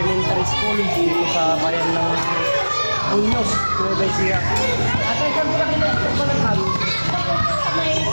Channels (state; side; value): inverted; both; correlation -1.00